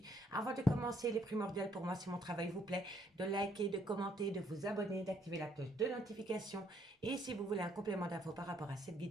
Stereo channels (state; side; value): normal; both; correlation 0.68